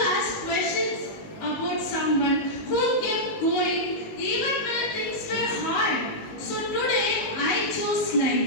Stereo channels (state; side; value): late; right; 19 ms